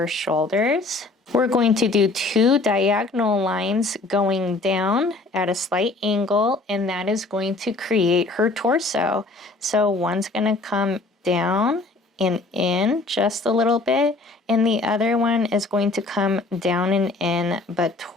shoulders. We're going to do two diagonal lines going down at a slight angle, and that is going to create her torso. So one's going to come down and in just a little bit, and the other one is going to come down and in, but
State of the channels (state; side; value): quieter; right; 3.4 dB